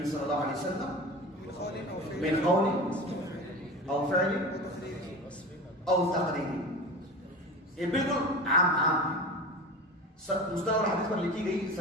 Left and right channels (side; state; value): both; normal; correlation 0.32